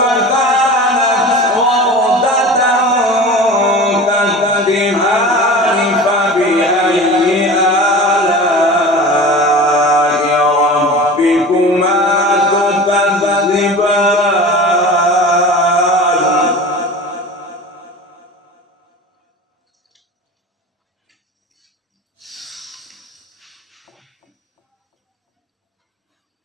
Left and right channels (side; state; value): both; normal; correlation 0.35